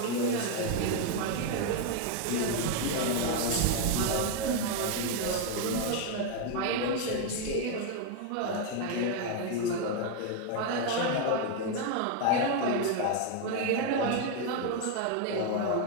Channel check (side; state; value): both; different; correlation 0.01